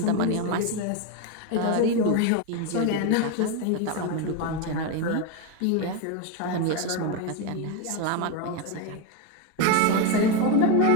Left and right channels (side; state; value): both; different; correlation 0.03